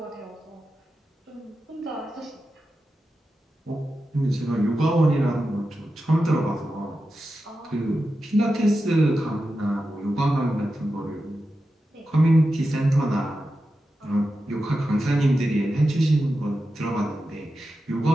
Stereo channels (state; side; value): normal; both; correlation 0.91